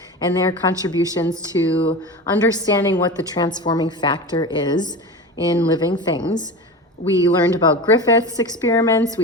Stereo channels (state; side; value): normal; both; correlation 0.28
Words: and their contributions to understanding what the transforming factor is in living things. We learned about Griffith's experiments,